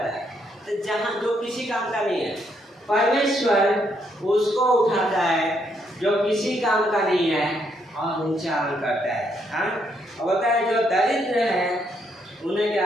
है, तो जहाँ जो किसी काम का नहीं है, परमेश्वर उसको उठाता है जो किसी काम का नहीं है और ऊंचा करता है। हाँ, और बोलता है जो दरिद्र है उन्हें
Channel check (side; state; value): both; normal; correlation 0.74